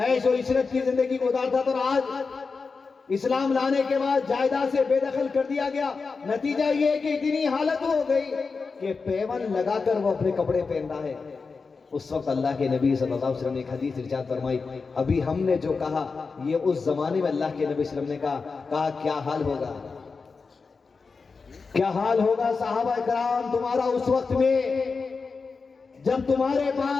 و عشرت کی زندگی گزارتا تھا، اور آج اسلام لانے کے بعد جائیداد سے بے دخل کر دیا گیا۔ نتیجہ یہ کہ اتنی حالت ہو گئی کہ پیون لگا کر وہ اپنے کپڑے پہن رہا ہے۔ اس وقت اللہ کے نبی صلی اللہ علیہ وسلم نے ایک حدیث ارشاد فرمائی، ابھی ہم نے جو کہا یہ اس زمانے میں اللہ کے نبی صلی اللہ علیہ وسلم نے کہا کیا حال ہوگا، کیا حال ہوگا صحابہ کرام تمہارا اس وقت میں جب تمہارے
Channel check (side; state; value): right; quieter; 4.6 dB